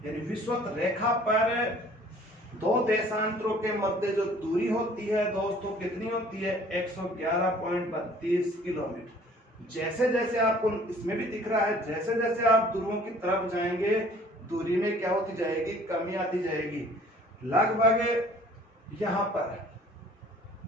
यानी विषुवत रेखा पर दो देशांतरों के मध्य जो दूरी होती है दोस्तों कितनी होती है 111.32 किलोमीटर। जैसे जैसे आपको इसमें भी दिख रहा है जैसे जैसे आप ध्रुवों की तरफ जाएंगे दूरी में क्या होती जाएगी कमी आती जाएगी। लगभग यहाँ पर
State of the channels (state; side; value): normal; both; correlation 0.53